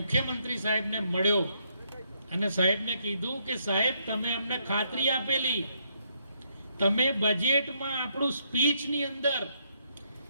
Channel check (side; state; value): both; inverted; correlation -0.74